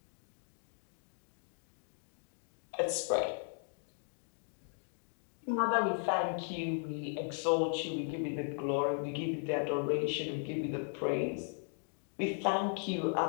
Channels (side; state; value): right; silent; 53 dB below the other